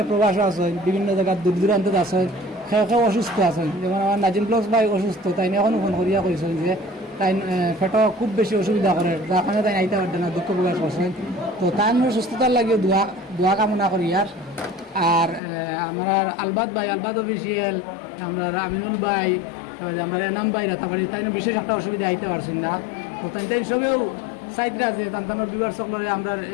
প্রবাস আছেন, বিভিন্ন জায়গার দূর দূরান্তত আছেন, সেও অসুস্থ আছেন। যেমন আমার নাজিম প্লস ভাই অসুস্থ, তাই এখনও ফোন করিয়া কইছেন যে তাই পেট খুব বেশি অসুবিধা করে, যার কারণে তাই আইতে পারতেন না, দুঃখ প্রকাশ করছেন। তো তাই সুস্থতার লাগিয়ে দোয়া কামনা করি। আর আমরা আলবাদ ভাই, আলবাদ অফিসিয়াল, আমরা আমিনুল ভাই, আমরা এনাম ভাই রাতাবাড়ি, তাই বিশেষ একটা অসুবিধা আইতে পারছেন না। তো তাই সবেও সাইডরা যে তান্তানোর বিবার সকলরে আমরা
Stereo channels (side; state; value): right; drops out; at 15.4 s